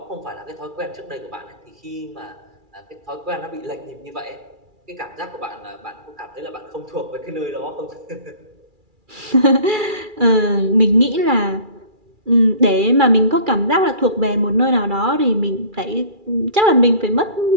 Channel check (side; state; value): left; late; 2.3 ms